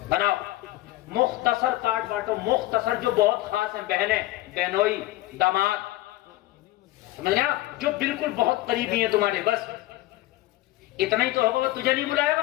بناؤ، مختصر کارڈ بانٹو، مختصر جو بہت خاص ہیں، بہنیں، بہنوئی، داماد، سمجھ گیا، جو بالکل بہت قریبی ہیں تمہارے، بس اتنا ہی تو ہوگا. وہ تجھے نہیں بلائے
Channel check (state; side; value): quieter; right; 17.0 dB